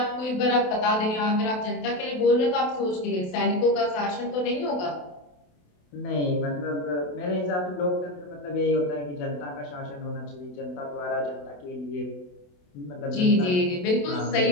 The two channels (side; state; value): right; late; 28 ms